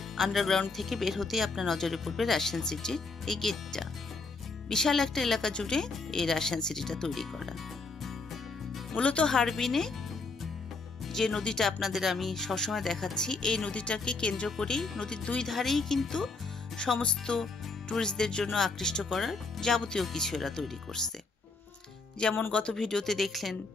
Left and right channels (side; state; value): right; quieter; 3.8 dB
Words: আন্ডারগ্রাউন্ড থেকে বের হতেই আপনার নজরে পড়বে রাশিয়ান সিটির এই গেটটা। বিশাল একটা এলাকা জুড়ে এই রাশিয়ান সিটিটা তৈরি করা। মূলত হারবিনে যে নদীটা আপনাদের আমি সবসময় দেখাচ্ছি, এই নদীটাকে কেন্দ্র করেই নদীর দুই ধারেই কিন্তু সমস্ত ট্যুরিস্টদের জন্য আকৃষ্ট করার যাবতীয় কিছু এরা তৈরি করছে। যেমন গত ভিডিওতে দেখলেন